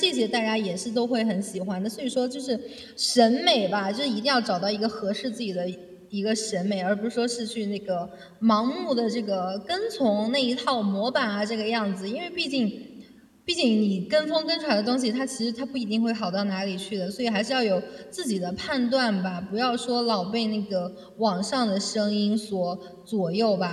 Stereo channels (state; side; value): identical; both; correlation 1.00